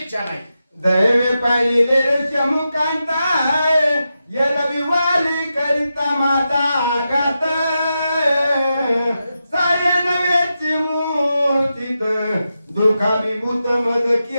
नाही. दैवे पाहिले चमुकांताय यलवी वाली करिता माता गात सायन वेची मूर्तीत दुखाभिभूत मज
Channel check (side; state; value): both; inverted; correlation -0.89